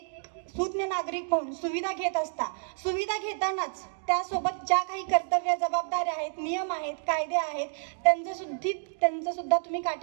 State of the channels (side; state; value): left; silent; digital silence